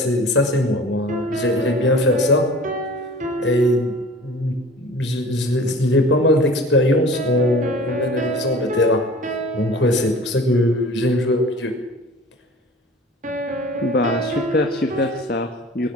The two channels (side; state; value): both; normal; correlation 0.43